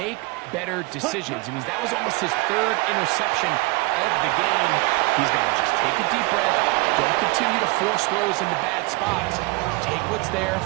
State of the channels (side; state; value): left; quieter; 24.8 dB